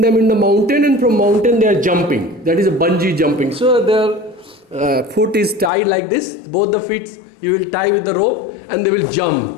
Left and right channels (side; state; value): right; drops out; at 5.7 s